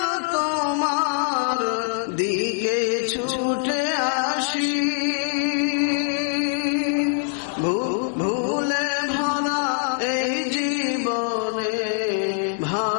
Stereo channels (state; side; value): silent; right; 56 dB below the other